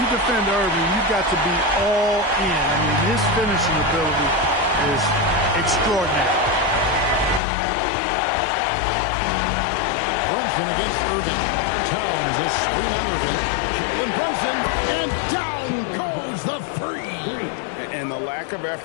you defend Irving, you've got to be all in. I mean, his finishing ability is extraordinary. Brunson against Irving. Towns a screen on Irving. Jalen Brunson, and down goes the 3. And the lack of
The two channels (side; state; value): right; drops out; at 7.4 s